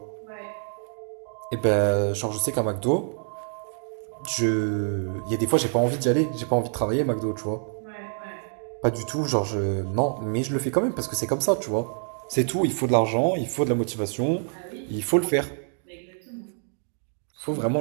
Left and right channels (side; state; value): left; silent; digital silence